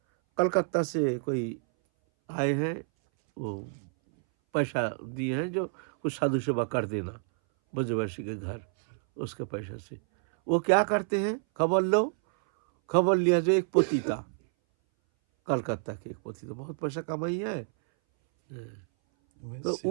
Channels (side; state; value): left; silent; 59 dB below the other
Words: कलकत्ता से कोई आए हैं, वो पैसा दिए हैं जो कुछ साधु सेवा कर देना ब्रजवासी के घर, उसके पैसा से। वो क्या करते हैं, खबर लो, खबर लिया। जो एक पोती था, कलकत्ता के एक पोती था, बहुत पैसा कमाई है, तो